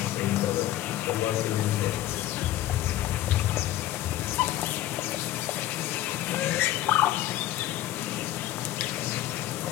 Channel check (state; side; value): quieter; right; 14.1 dB